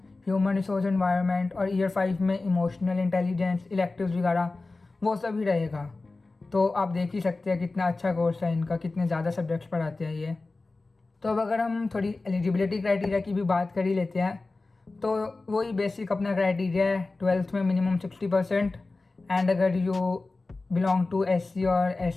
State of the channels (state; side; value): quieter; right; 3.4 dB